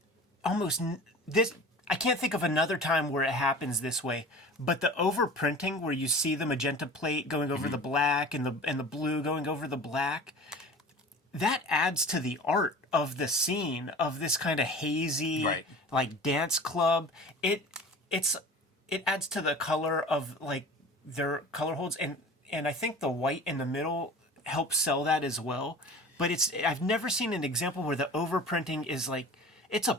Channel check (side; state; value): both; normal; correlation 0.40